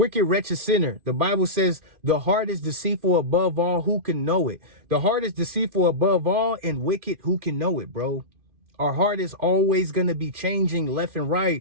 wretched sinner. The Bible says the heart is deceitful above all. Who can know it? The heart is deceitful above all and wicked. Who can know it, bro? Our heart is always going to be changing left and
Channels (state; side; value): late; left; 2.5 ms